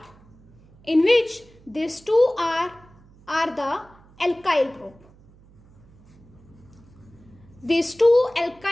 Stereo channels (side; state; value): right; noise; hum, 26 dB below the sound